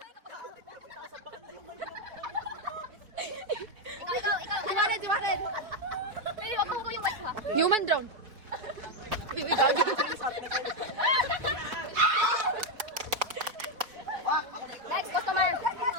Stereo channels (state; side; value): late; left; 4.8 ms